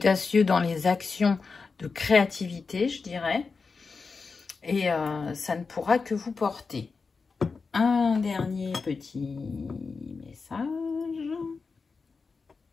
dans les actions de créativité, je dirais. Et ça ne pourra que vous porter. Un dernier petit message.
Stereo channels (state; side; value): quieter; right; 4.7 dB